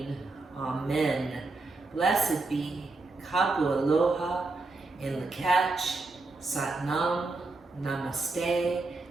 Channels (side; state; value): left; quieter; 3.5 dB